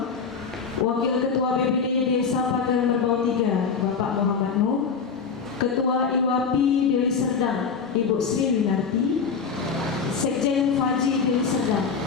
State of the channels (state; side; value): quieter; right; 5.7 dB